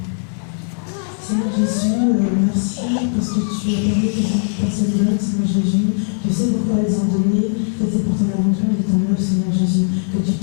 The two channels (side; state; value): right; silent; 67 dB below the other